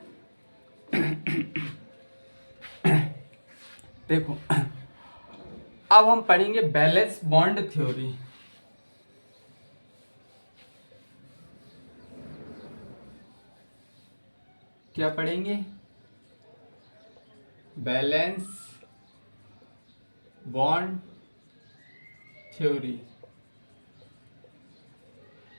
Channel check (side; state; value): both; inverted; correlation -1.00